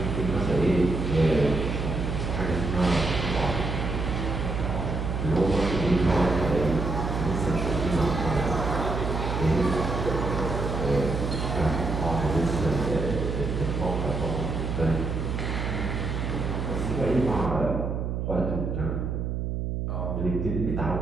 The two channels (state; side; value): noise; right; hum, 2 dB below the sound